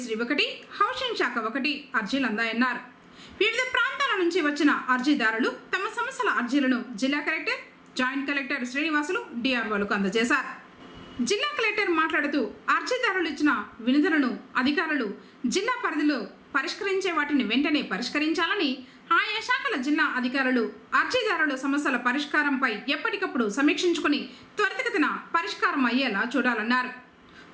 1, హౌసింగ్ శాఖ 1 అర్జీలు అందాయన్నారు. వివిధ ప్రాంతాల నుంచి వచ్చిన అర్జీదారులు తమ సమస్యల అర్జీలను జిల్లా కలెక్టర్, జాయింట్ కలెక్టర్ శ్రీనివాసులు, డిఆర్ఓలకు అందజేశారు. జిల్లా కలెక్టర్ మాట్లాడుతూ అర్జీదారులు ఇచ్చిన వినతులను అధికారులు జిల్లా పరిధిలో పరిష్కరించే వాటిని వెంటనే పరిష్కరించాలని, ఆయా శాఖల జిల్లా అధికారులు అర్జీదారుల సమస్యల పరిష్కారంపై ఎప్పటికప్పుడు సమీక్షించుకుని త్వరితగతిన పరిష్కారం అయ్యేలా చూడాలన్నారు.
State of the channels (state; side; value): identical; both; correlation 1.00